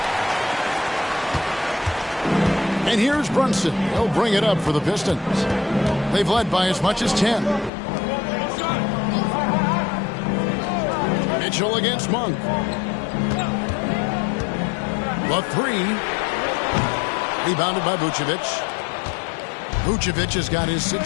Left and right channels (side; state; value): right; drops out; at 7.7 s